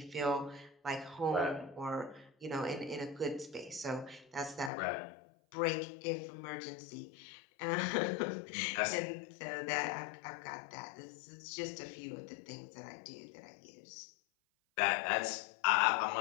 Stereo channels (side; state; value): right; drops out; at 4.7 s